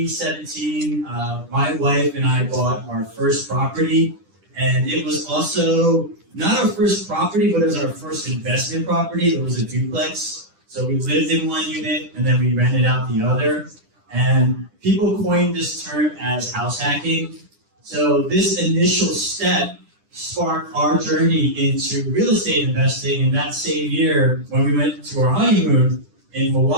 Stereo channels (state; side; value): late; left; 10 ms